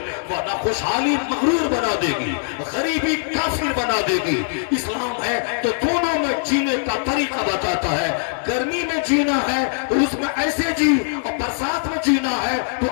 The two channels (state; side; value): silent; right; digital silence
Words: ورنہ خوشحالی مغرور بنا دے گی، غریبی کافر بنا دے گی. اسلام ہے تو دونوں میں جینے کا طریقہ بتاتا ہے. گرمی میں جینا ہے تو اس میں ایسے جی، اور برسات میں جینا ہے تو